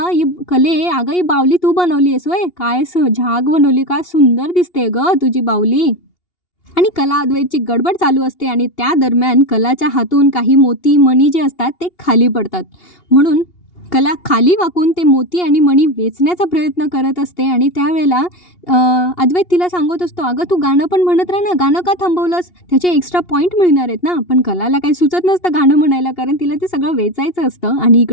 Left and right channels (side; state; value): right; late; 2.8 ms